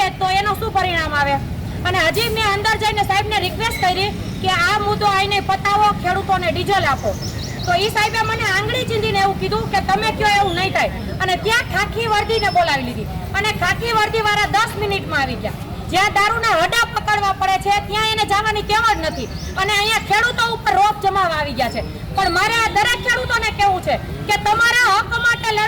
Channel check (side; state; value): both; identical; correlation 1.00